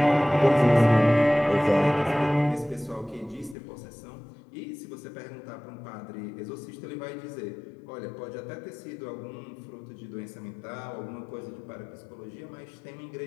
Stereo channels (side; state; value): right; drops out; at 3.6 s